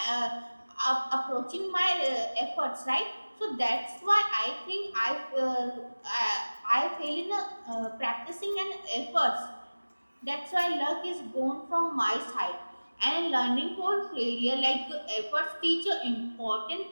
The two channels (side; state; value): both; inverted; correlation -1.00